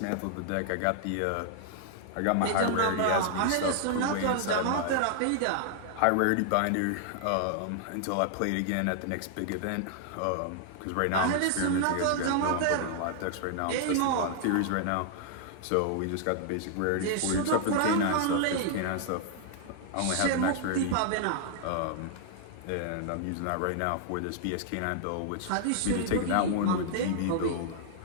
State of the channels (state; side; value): different; both; correlation -0.01